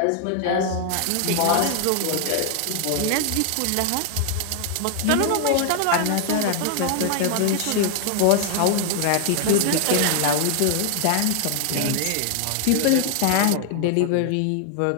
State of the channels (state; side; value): different; both; correlation 0.00